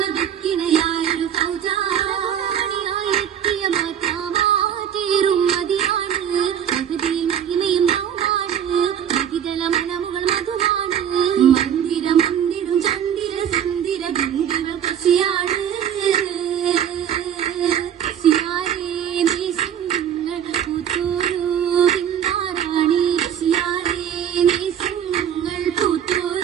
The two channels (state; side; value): quieter; left; 9.3 dB